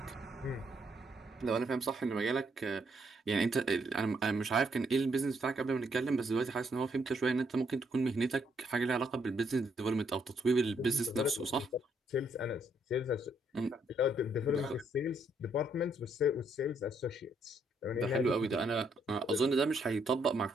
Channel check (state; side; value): normal; both; correlation 0.72